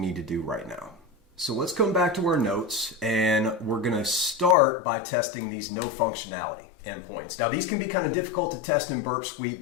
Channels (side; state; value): right; drops out; at 4.5 s